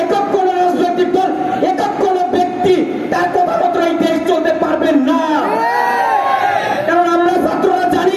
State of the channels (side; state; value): both; identical; correlation 1.00